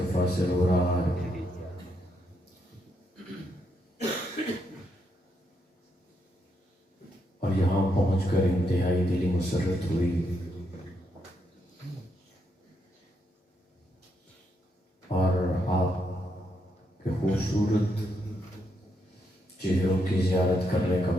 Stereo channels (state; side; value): normal; both; correlation 0.79